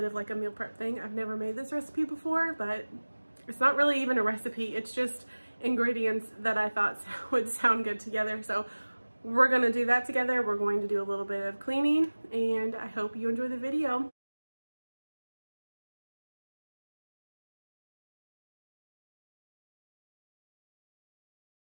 of like a meal prep thing. I've never made this recipe before, but it's not really even a recipe. It's just ingredients that I thought would sound good together. So we're going to do that together. We're going to do a little bit of cleaning and I hope you enjoy the video.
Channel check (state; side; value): inverted; both; correlation -1.00